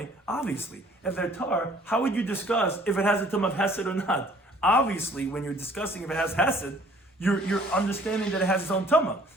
obviously, if they're tar, how would you discuss if it has a term of hesed or not? Obviously, when you're discussing if it has hesed, you're understanding that it has its own tama.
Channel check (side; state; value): both; normal; correlation 0.56